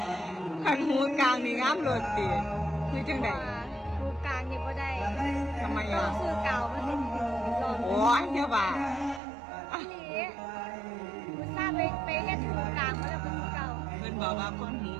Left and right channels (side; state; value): left; drops out; at 9.2 s